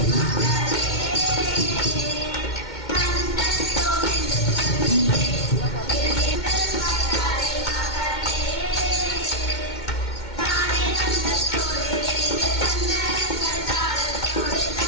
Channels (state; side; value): late; right; 2.2 ms